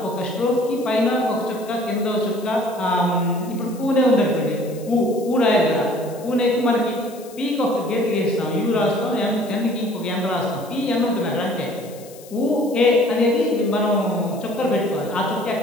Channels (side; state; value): left; noise; hiss, 21 dB below the sound